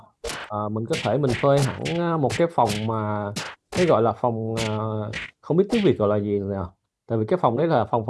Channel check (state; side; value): identical; both; correlation 1.00